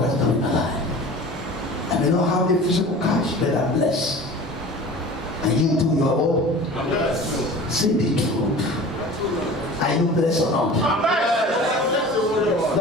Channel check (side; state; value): both; normal; correlation 0.39